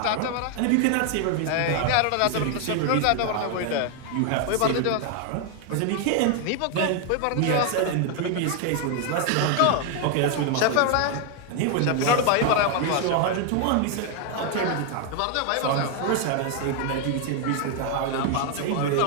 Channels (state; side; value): different; both; correlation 0.00